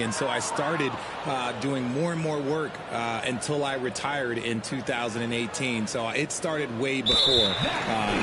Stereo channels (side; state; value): both; identical; correlation 1.00